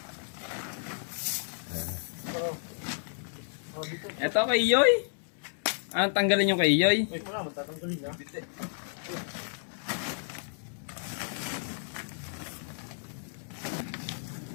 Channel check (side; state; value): right; silent; 57 dB below the other